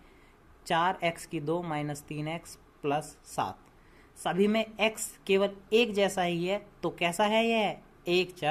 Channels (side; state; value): both; identical; correlation 1.00